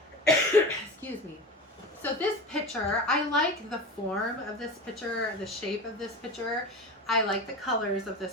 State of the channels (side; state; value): both; normal; correlation 0.28